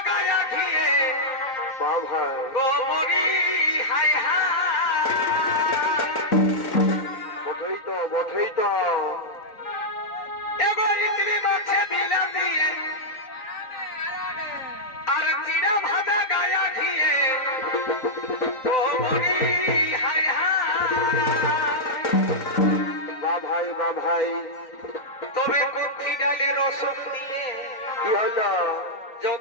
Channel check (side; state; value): right; late; 3.9 ms